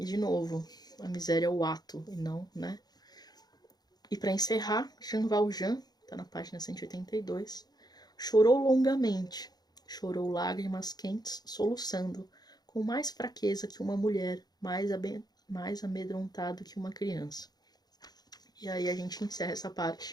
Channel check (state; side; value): late; right; 0.19 ms